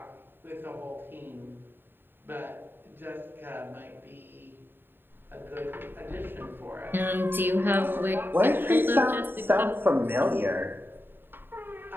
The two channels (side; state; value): left; late; 0.098 ms